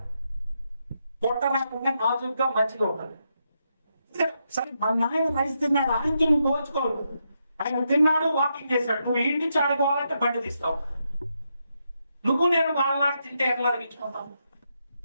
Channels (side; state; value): both; inverted; correlation -0.82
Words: పొట్ట రాకుండా నాజుగా మంచిగా ఉంటారు. సరే మా నాయన రైస్ తిన్నాడు, ఆయనకి నువ్వు పోల్చుకోవద్దు. ఆయన తిన్నాడు, వాకింగ్ చేశాడు, నువ్వు ఇంటి నుంచి ఆడుకోవాలంటే బండి తీస్తావు. నువ్వు నేను వాళ్ళలాగా తింటే ఎట్లా అరిగించుకుంటావు?